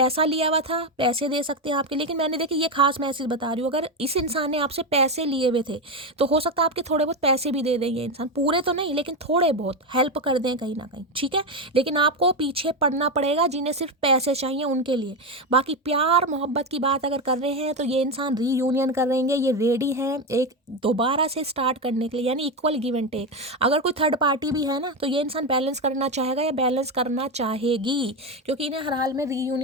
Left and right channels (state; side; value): normal; both; correlation 0.12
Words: लिया हुआ था, पैसे दे सकते हैं आपके, लेकिन मैंने देखिए ये खास मैसेज बता रही हूँ, अगर इस इंसान ने आपसे पैसे लिए हुए थे तो हो सकता है आपके थोड़े बहुत पैसे भी दे दें ये इंसान, पूरे तो नहीं लेकिन थोड़े बहुत हेल्प कर दें कहीं ना कहीं, ठीक है। लेकिन आपको पीछे पड़ना पड़ेगा जिन्हें सिर्फ पैसे चाहिए उनके लिए। बाकी प्यार मोहब्बत की बात अगर कर रहे हैं तो ये इंसान रीयूनियन करेंगे, ये रेडी है एक दोबारा से स्टार्ट करने के लिए, यानी इक्वल गिव एंड टेक। अगर कोई थर्ड पार्टी भी है ना तो ये इंसान बैलेंस करना चाहेगा या बैलेंस करना चाहेगी, क्योंकि इन्हें हर हाल में